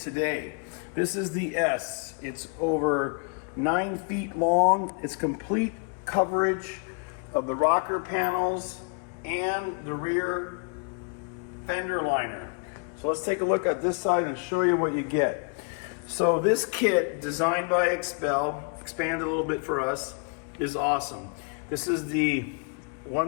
today. This is the S. It's over 9 feet long. It's complete coverage of the rocker panels and the rear fender liner. So let's take a look at this side and show you what you get. So this kit, designed by Expel, expanded a little bit for us, is awesome. This is the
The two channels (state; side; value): quieter; right; 38.9 dB